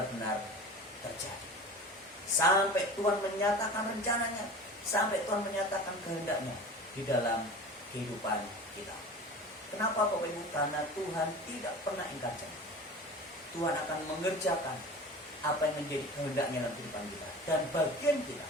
terjadi. Sampai Tuhan menyatakan rencananya, sampai Tuhan menyatakan kehendaknya di dalam kehidupan kita. Kenapa Bapak Ibu? Karena Tuhan tidak pernah ingkar janji. Tuhan akan mengerjakan apa yang menjadi kehendaknya dalam kehidupan kita. Dan bagian kita,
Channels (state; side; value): normal; both; correlation 0.36